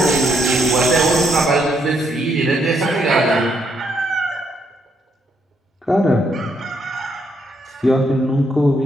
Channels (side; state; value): both; normal; correlation 0.75